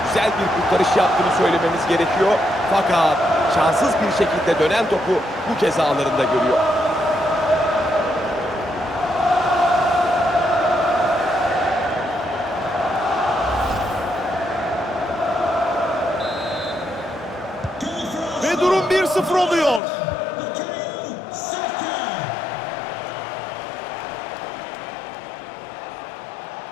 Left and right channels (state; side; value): drops out; right; at 19.8 s